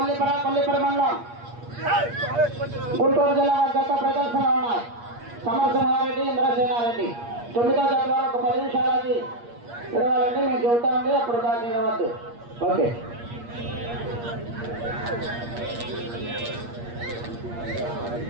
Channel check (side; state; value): left; late; 8.5 ms